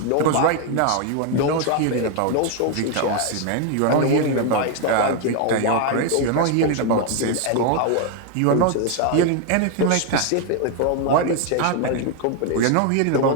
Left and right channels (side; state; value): both; different; correlation 0.01